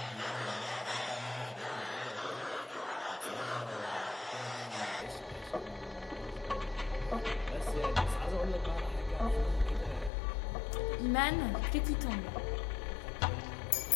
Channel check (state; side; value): drops out; right; at 10.1 s